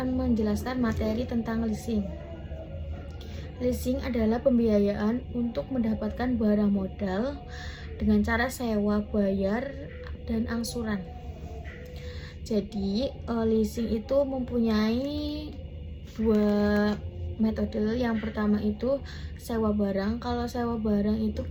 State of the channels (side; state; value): both; identical; correlation 1.00